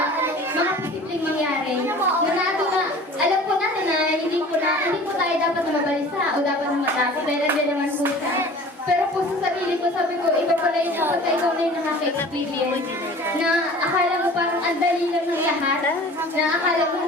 mga posibleng mangyari. Alam po natin na hindi po tayo dapat na mabalisa o dapat na matakot dahil nandiyan naman po siya. Pero po sa sarili ko, sabi ko, iba pala yung kapag ikaw na yung nakaka-experience na akala mo parang ang dali lang ng lahat, na akala mo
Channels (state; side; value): normal; both; correlation 0.44